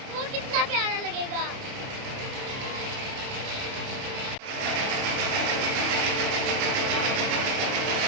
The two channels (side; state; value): left; late; 29 ms